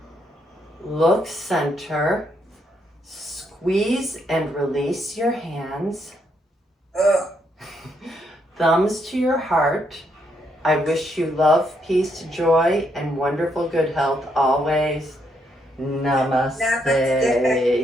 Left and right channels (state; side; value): normal; both; correlation 0.76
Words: Look center. Squeeze and release your hands. Thumbs to your heart. I wish you love, peace, joy, and wonderful good health always. Namaste.